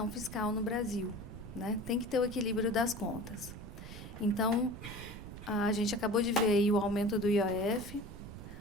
fiscal no Brasil, né? Tem que ter o equilíbrio das contas. Então, a gente acabou de ver aí o aumento do IOF,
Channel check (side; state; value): right; noise; rumble, 12 dB below the sound